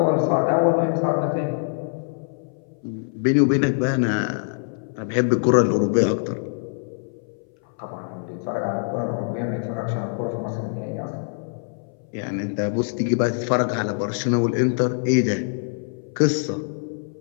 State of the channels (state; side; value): silent; right; 59 dB below the other